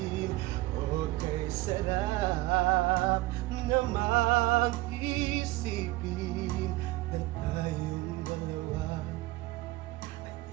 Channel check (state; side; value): quieter; left; 19.0 dB